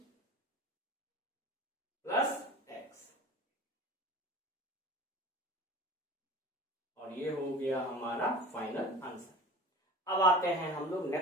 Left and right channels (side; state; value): both; normal; correlation 0.38